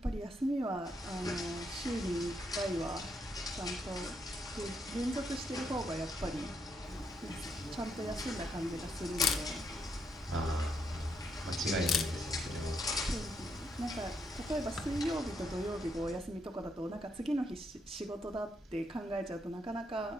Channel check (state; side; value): normal; both; correlation 0.77